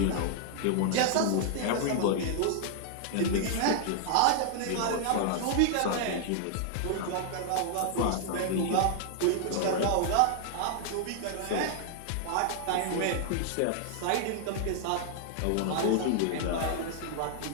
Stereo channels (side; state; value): both; different; correlation -0.01